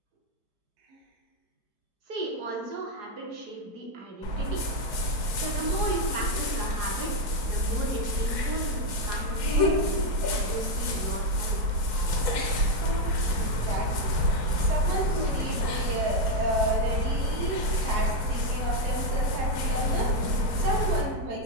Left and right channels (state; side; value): late; left; 4.6 ms